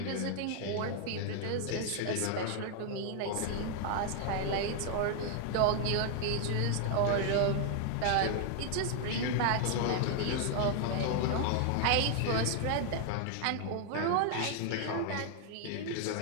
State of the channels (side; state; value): both; different; correlation 0.00